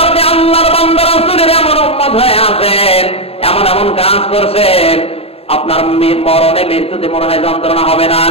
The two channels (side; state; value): right; late; 0.28 ms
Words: আপনি আল্লাহর বান্দা রাসূলের এমন উম্মত হয়ে আছেন, এমন এমন কাজ করছেন, আপনার মরণে মৃত্যুতে মনে হয় যন্ত্রণা হবে না,